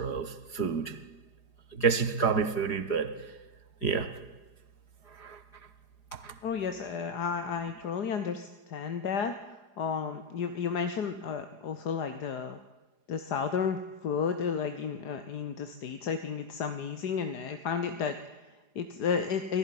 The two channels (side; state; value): right; late; 4.9 ms